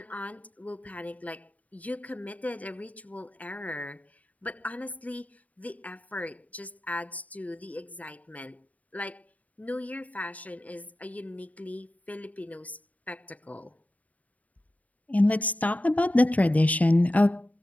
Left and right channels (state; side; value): late; right; 0.072 ms